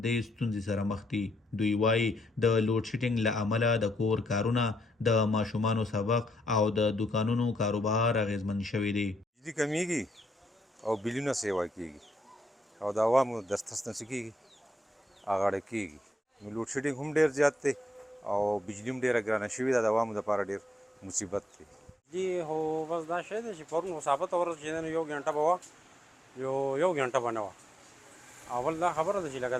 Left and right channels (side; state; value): both; normal; correlation 0.78